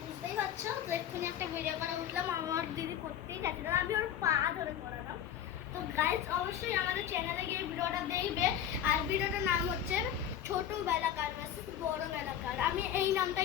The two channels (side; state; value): right; quieter; 9.9 dB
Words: পারছো, তো এক্ষুনি একটা ভিডিও করা উঠলাম, আমার দিদি করতেই যাচ্ছে না, আমি ওর পা ধরে করালাম। তো গাইস অবশ্যই আমাদের চ্যানেলে গিয়ে ভিডিওটা দেখবে। আর ভিডিওটার নাম হচ্ছে ছোট বেলাকার ভার্সেস বড় বেলাকার। আমি এই